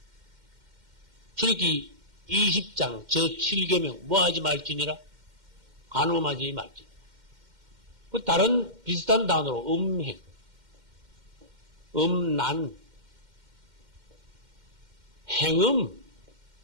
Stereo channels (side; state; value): left; late; 2.1 ms